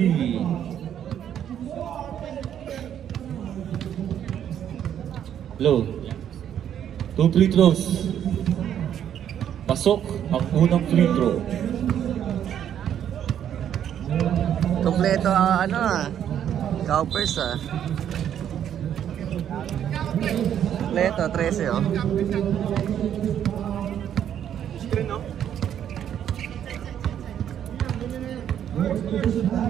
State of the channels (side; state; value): left; quieter; 9.8 dB